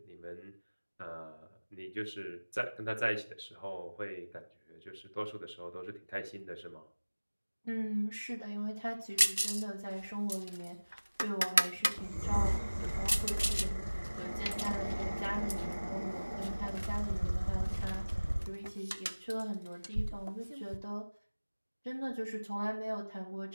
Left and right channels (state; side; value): inverted; both; correlation -1.00